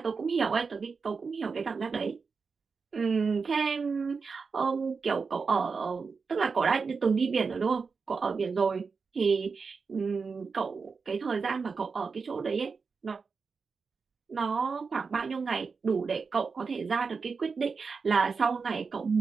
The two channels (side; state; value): left; quieter; 5.0 dB